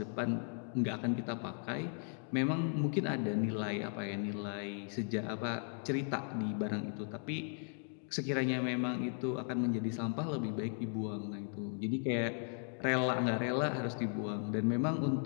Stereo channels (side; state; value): right; silent; 53 dB below the other